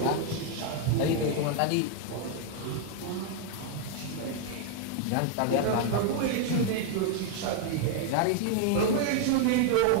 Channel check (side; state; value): both; different; correlation 0.00